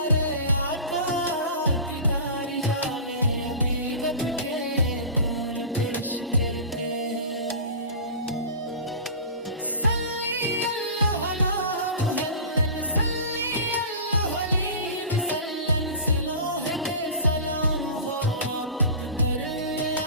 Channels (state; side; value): inverted; both; correlation -0.34